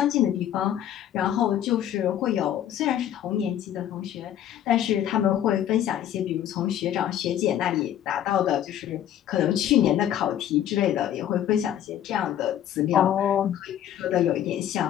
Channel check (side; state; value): right; quieter; 10.9 dB